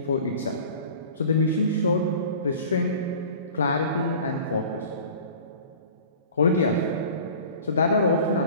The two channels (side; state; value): both; inverted; correlation -0.42